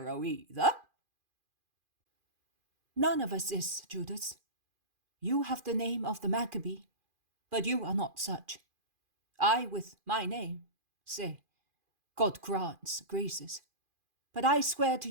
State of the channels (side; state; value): left; late; 2.4 ms